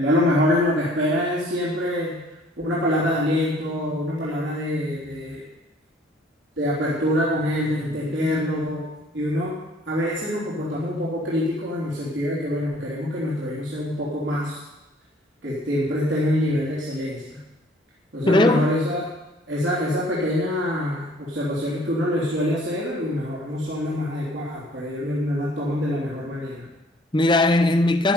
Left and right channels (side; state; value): both; normal; correlation 0.57